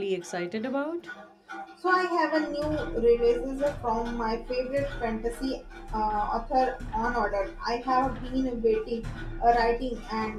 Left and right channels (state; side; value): identical; both; correlation 1.00